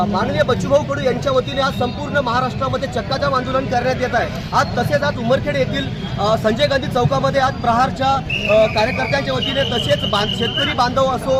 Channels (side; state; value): both; identical; correlation 1.00